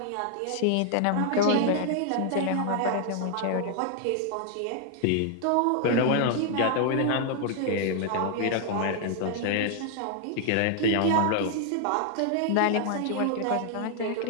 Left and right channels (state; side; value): different; both; correlation 0.00